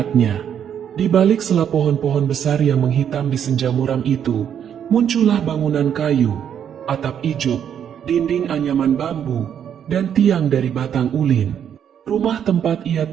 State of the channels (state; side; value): quieter; left; 8.9 dB